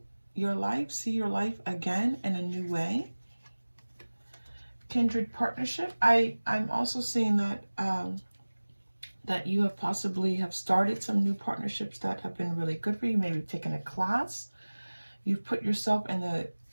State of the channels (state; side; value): inverted; both; correlation -1.00